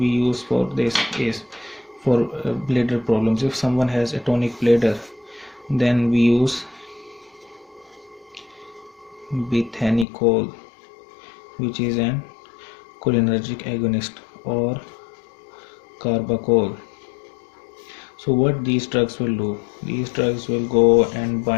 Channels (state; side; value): drops out; right; at 10.1 s